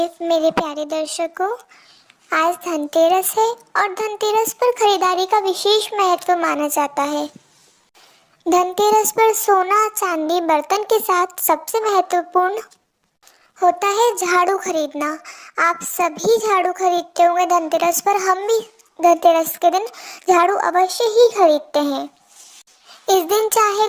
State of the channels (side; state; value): both; identical; correlation 1.00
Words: मेरे प्यारे दर्शकों। आज धनतेरस है और धनतेरस पर खरीदारी का विशेष महत्व माना जाता है। धनतेरस पर सोना चांदी बर्तन के साथ सबसे महत्वपूर्ण होता है झाड़ू खरीदना। आप सभी झाड़ू खरीदते होंगे धनतेरस पर। हम भी धनतेरस के दिन झाड़ू अवश्य ही खरीदते हैं। इस दिन चाहे